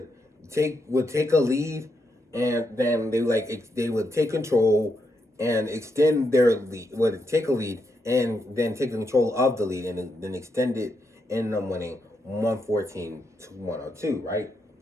take a lead, and then they would take control and extend their lead. Would take a lead and then take control of the lead and then extend it, and them winning 114 to 102. Right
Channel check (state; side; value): normal; both; correlation 0.82